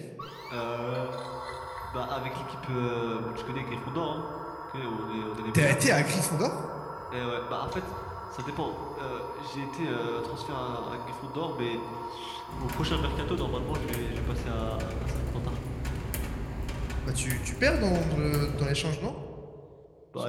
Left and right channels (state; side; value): identical; both; correlation 1.00